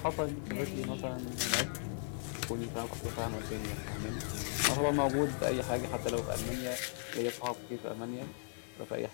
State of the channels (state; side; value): silent; right; 53 dB below the other